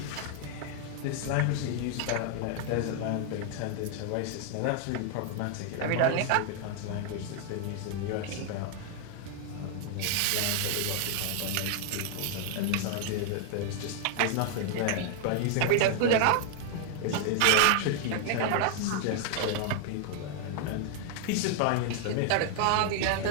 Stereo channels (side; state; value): both; different; correlation 0.00